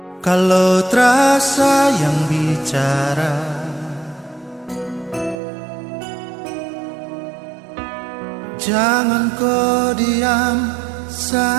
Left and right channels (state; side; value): drops out; left; at 5.4 s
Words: kalau terasa yang bicara, jangan kau diam